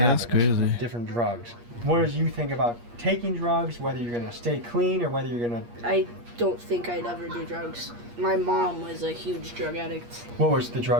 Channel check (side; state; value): left; late; 8.5 ms